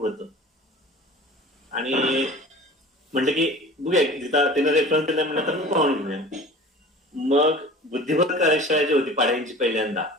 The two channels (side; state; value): both; normal; correlation 0.41